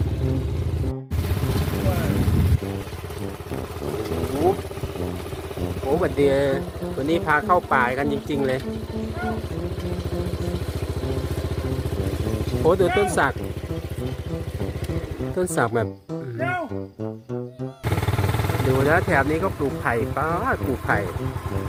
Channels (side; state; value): both; identical; correlation 1.00